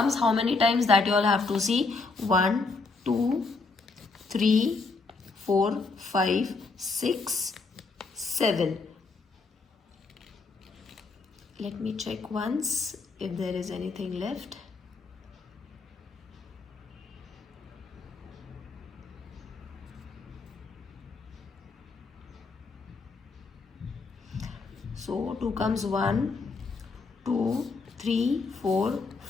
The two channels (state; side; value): quieter; right; 4.0 dB